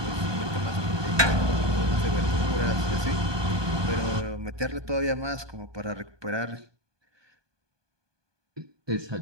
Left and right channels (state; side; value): late; left; 1.2 ms